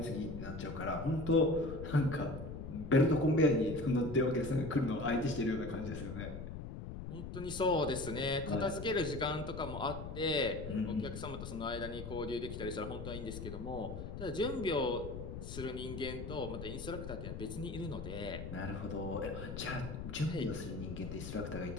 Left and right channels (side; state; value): left; noise; rumble, 8 dB below the sound